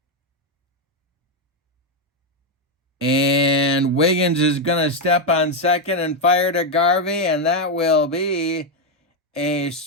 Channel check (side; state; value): both; normal; correlation 0.04